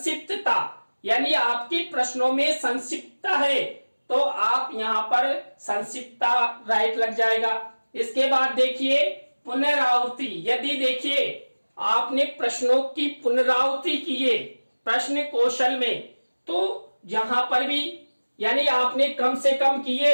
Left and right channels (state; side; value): inverted; both; correlation -1.00